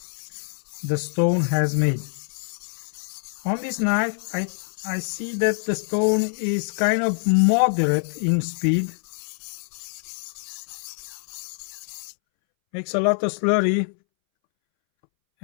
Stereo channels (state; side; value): silent; right; 62 dB below the other